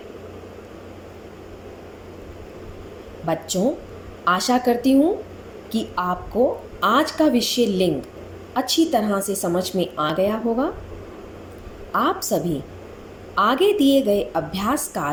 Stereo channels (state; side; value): identical; both; correlation 1.00